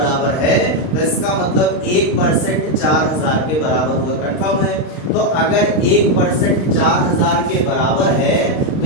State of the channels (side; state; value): right; late; 39 ms